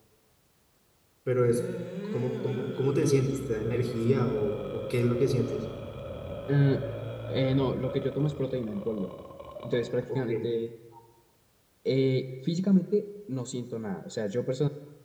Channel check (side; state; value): both; identical; correlation 1.00